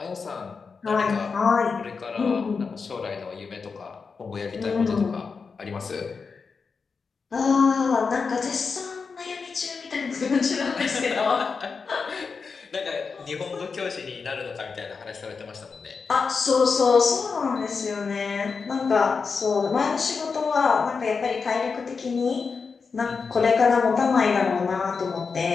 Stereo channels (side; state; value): right; quieter; 5.1 dB